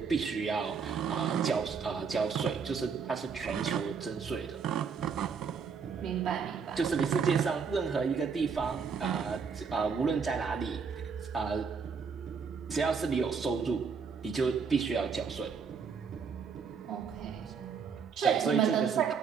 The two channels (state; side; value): quieter; left; 5.9 dB